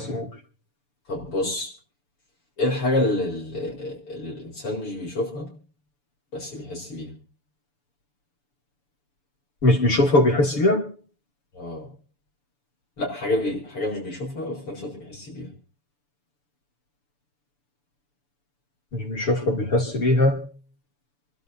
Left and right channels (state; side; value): late; right; 6.9 ms